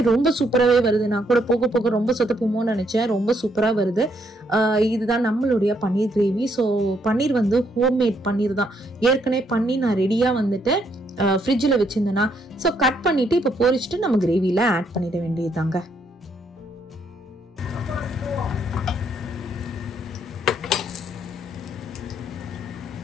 ரொம்ப சூப்பராகவே வருது. நான் கூட போக போக ரொம்ப சொத்தப்போமோன்னு நினச்சேன், ரொம்ப சூப்பராக வருது. இதுதான் நம்மளுடைய பன்னீர் கிரேவி. ஸோ பன்னீர் வந்து ஹோம்மேட் பன்னீர் தான். ஏற்கனவே பண்ணி நான் ரெடியாக வந்துட்டு ஃப்ரிட்ஜில் வச்சுருந்தேன்னா. ஸோ கட் பண்ணிவிட்டு இப்போ பொரிச்சிட்டு நம்ம கிரேவியில் ஆட் பண்ணிட வேண்டியதுதாங்க.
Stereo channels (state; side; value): normal; both; correlation 0.73